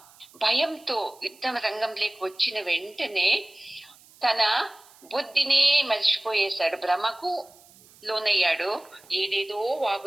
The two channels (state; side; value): noise; right; hiss, 26 dB below the sound